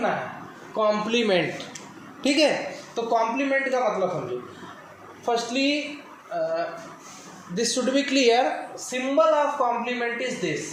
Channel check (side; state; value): both; identical; correlation 1.00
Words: है? कॉम्प्लीमेंट. ठीक है, तो कॉम्प्लीमेंट का मतलब समझो. Firstly this should be clear. Symbol of complement is